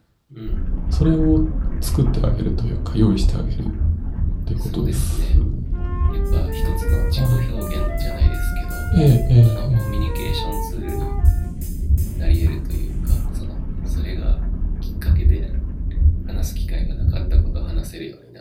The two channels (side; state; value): both; identical; correlation 1.00